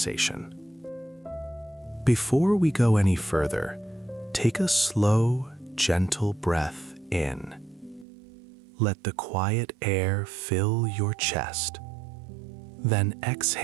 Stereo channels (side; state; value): left; drops out; at 8.1 s